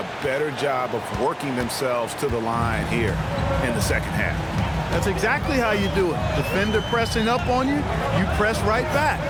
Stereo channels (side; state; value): both; identical; correlation 1.00